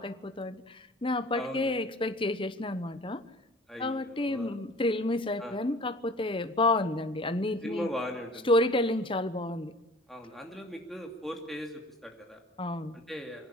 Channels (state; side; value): normal; both; correlation 0.47